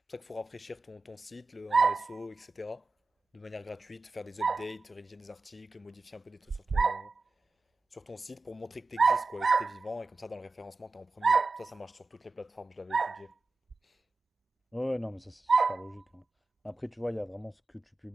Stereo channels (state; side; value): quieter; left; 3.6 dB